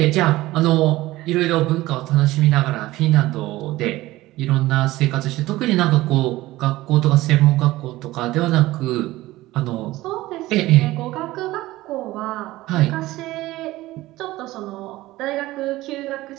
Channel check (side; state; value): left; quieter; 17.6 dB